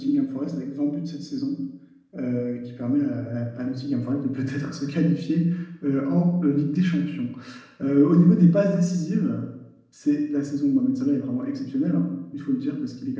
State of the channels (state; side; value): identical; both; correlation 1.00